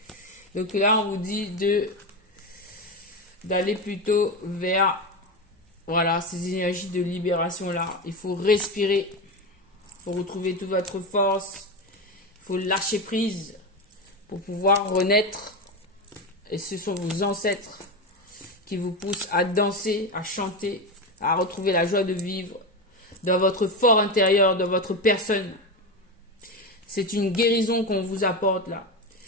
Donc là, on vous dit d'aller plutôt vers, voilà, ces énergies de libération-là. Il faut respirer. Il faut retrouver toute votre force. Il faut lâcher prise pour pouvoir renaître. Et ce sont vos ancêtres qui vous poussent à danser, à chanter, à retrouver la joie de vivre dans votre fort intérieur, dans votre personne. C'est une guérison qu'on vous apporte là.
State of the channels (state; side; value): normal; both; correlation 0.17